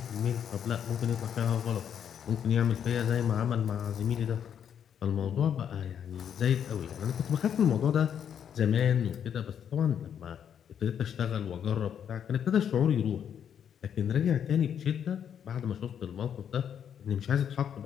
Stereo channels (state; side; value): quieter; right; 8.6 dB